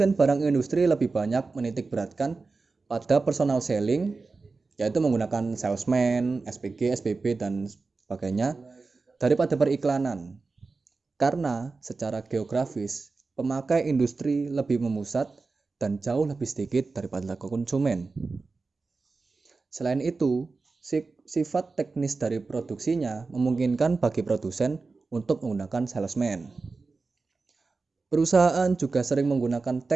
barang industri lebih banyak menitik beratkan pada personal selling, yaitu menggunakan salesman, SPG, SPB, dan sebagainya, daripada periklanan. Karena secara geografis, pemakai industri lebih memusat dan jauh lebih sedikit daripada konsumen. Selain itu, sifat teknis dari produksinya memungkinkan bagi produsen untuk menggunakan salesman. Perusahaan juga sering menggunakan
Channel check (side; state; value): left; quieter; 4.0 dB